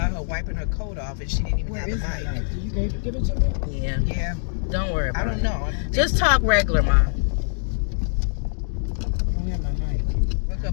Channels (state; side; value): silent; right; digital silence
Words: her wiping her coat off and she didn't even Where have is the my mic. knife? Did you give it to me? Yeah. Yeah. Don't worry about it. I don't know. Just talk regular, Ma. I don't have my mic. Look